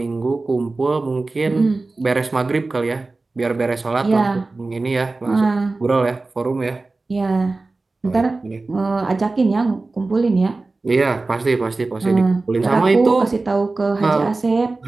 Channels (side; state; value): left; quieter; 3.4 dB